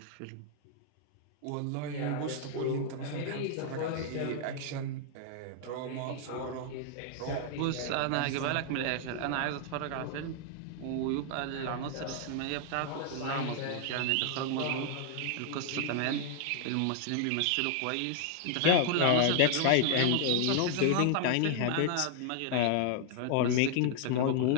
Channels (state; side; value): different; both; correlation 0.00